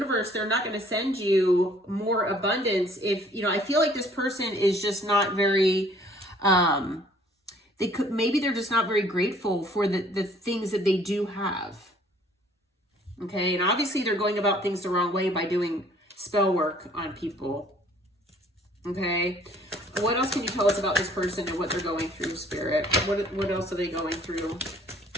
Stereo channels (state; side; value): normal; both; correlation 0.58